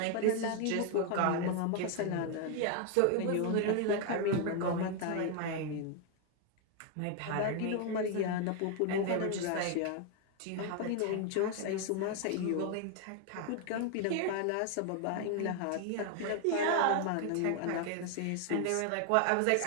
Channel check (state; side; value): different; both; correlation 0.00